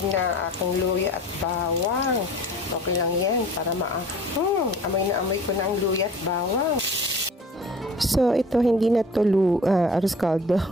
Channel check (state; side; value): normal; both; correlation 0.44